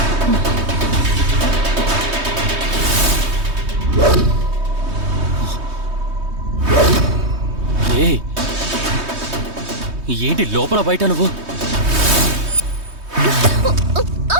ఏంటి లోపల బయట నువ్వు?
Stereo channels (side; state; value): left; late; 3.2 ms